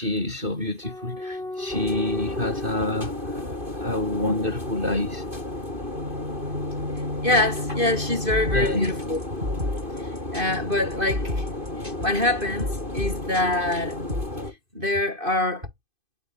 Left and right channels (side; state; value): left; late; 2.5 ms